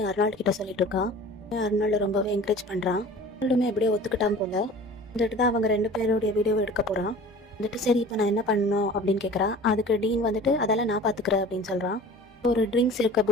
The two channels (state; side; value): normal; both; correlation 0.42